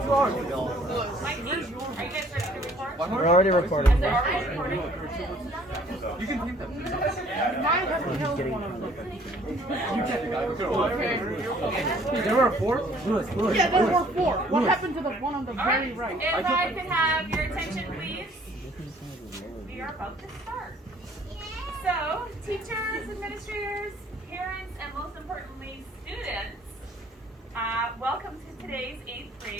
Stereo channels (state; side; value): normal; both; correlation 0.58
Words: hours ago. Are you guys ready to record? We're already recording. You can keep them. There were 4? Lewis. Yeah, there were 4. What happened to the one on the very right? If I could have your attention, please. We are about to start. So, teachers, administrators, parents, and most importantly, students, welcome to today's 8th